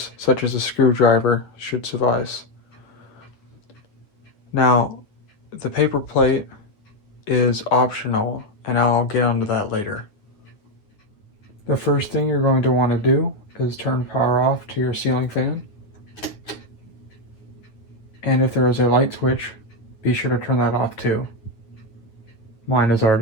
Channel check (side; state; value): right; late; 9.4 ms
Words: such as a screwdriver should suffice. Now, the paper plate is optional, and I'll get onto that later. The first thing you're going to want to do is turn power off to your ceiling fan. And if there is a light switch, be sure to turn that off too. Mine is